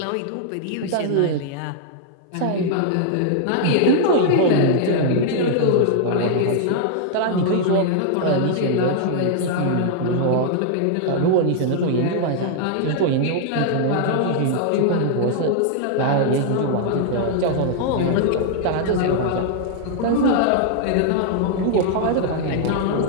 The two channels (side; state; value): both; different; correlation -0.01